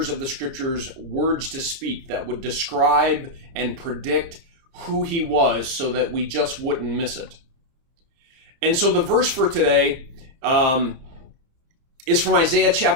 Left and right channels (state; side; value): late; left; 29 ms